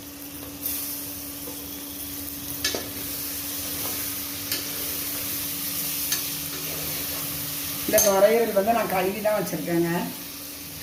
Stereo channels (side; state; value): both; identical; correlation 1.00